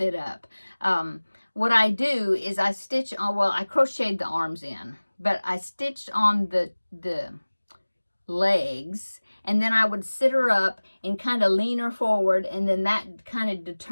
up. What I do is I stitch on, well, I crocheted the arms in, but I stitched on the legs, and then I would sit her up and kind of lean her forward, and then that kind of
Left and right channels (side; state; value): both; inverted; correlation -1.00